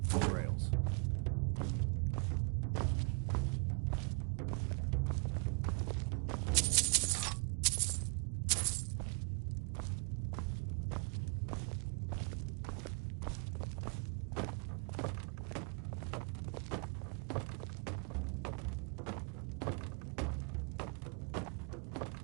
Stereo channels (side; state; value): left; quieter; 36.2 dB